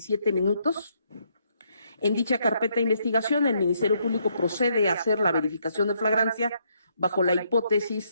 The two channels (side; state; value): both; inverted; correlation -0.73